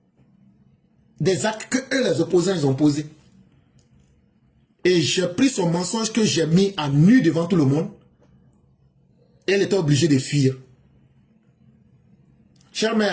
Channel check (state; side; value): identical; both; correlation 1.00